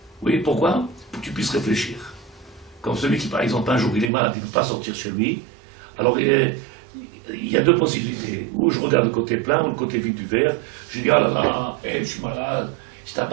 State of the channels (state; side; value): drops out; left; at 4.1 s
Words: Oui, pourquoi? Pour que tu puisses réfléchir. Comme celui qui, par exemple, un jour, il est malade, il ne peut pas sortir chez lui, alors il y a deux possibilités. Ou je regarde le côté plein, ou le côté vide du verre, je dis, ah là là, je suis malade, je